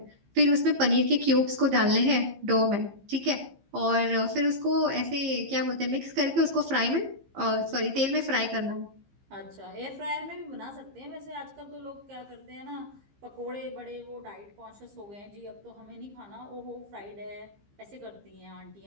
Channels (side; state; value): left; late; 15 ms